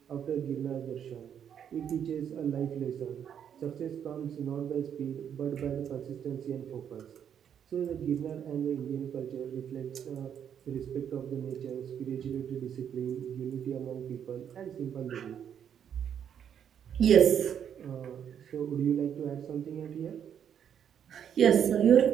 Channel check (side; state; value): left; quieter; 8.7 dB